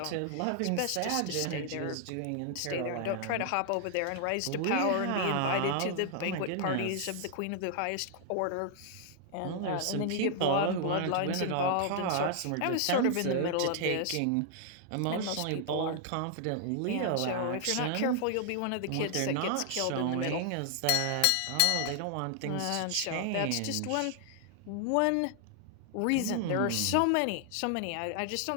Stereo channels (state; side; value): different; both; correlation 0.00